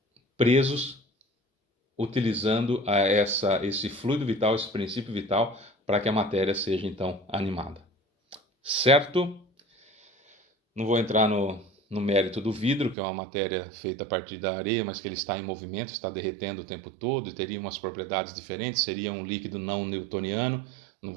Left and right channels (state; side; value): drops out; left; at 13.0 s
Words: presos, utilizando esse fluido vital, esse princípio vital, para que a matéria seja então animada. Certo? Não vou entrar no mérito do vidro, que é uma matéria feita a partir da areia, mas que ele está em movimento, está derretendo o tempo todo e teria umas propriedades diferentes, seria um líquido não newtoniano. Não